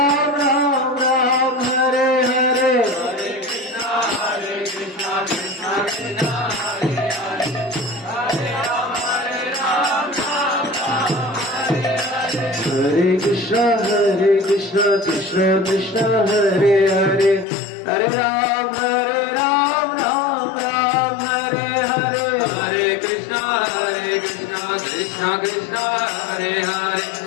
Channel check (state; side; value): drops out; right; at 17.4 s